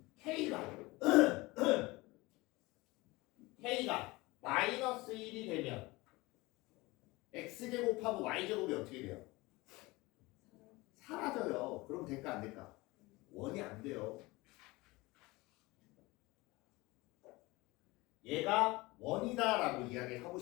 K가 마이너스 1이 되면 X제곱하고 Y제곱이 어떻게 돼요? 사라져요. 그럼 될까 안 될까? 원이 안 돼요. 얘가 원이다라고 이야기를 하고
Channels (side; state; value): right; quieter; 22.0 dB